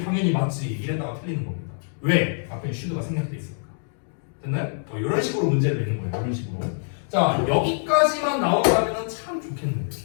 당연히 맞지 이랬다가 틀리는 겁니다. 왜? 앞에 should가 생략돼 있으니까. 됐나요? 이런 식으로 문제를 내는 거예요. 이런 식으로. 자, 여기까지만 나온다면 참 좋겠는데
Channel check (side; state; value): right; silent; digital silence